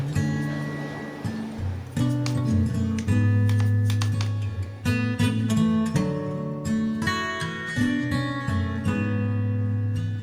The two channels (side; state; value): both; identical; correlation 1.00